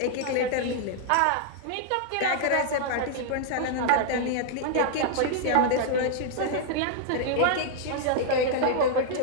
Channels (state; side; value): different; both; correlation -0.01